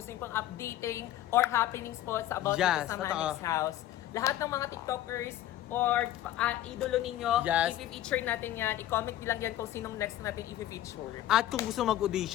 niyo pong updating or happenings po sa about Yes, dito sa totoo. Manix House. Lahat ng mga TikTokers or idolo ninyo, Yes. i-feature natin yan. I-comment nyo lang yan kung sinong next natin i-feature. At kung gusto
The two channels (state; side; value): quieter; right; 13.4 dB